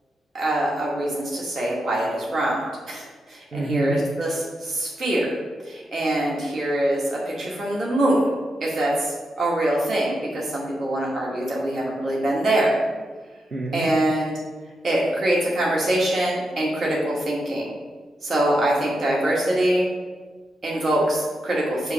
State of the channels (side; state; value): both; normal; correlation 0.85